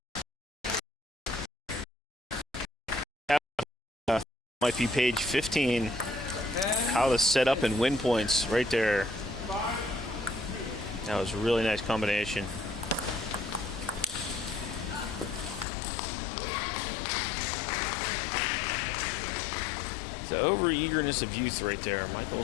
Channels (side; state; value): right; drops out; at 15.7 s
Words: Might be page 15. How to set up and win points right there. That was a really nice combination. The over-eagerness of youth right there.